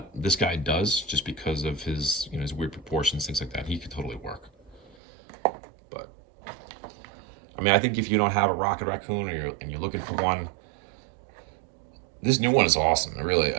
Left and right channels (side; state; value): left; drops out; at 5.0 s